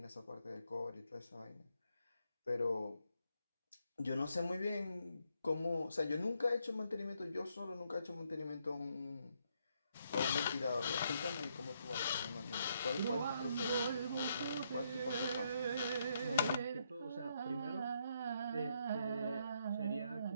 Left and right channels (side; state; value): both; inverted; correlation -0.76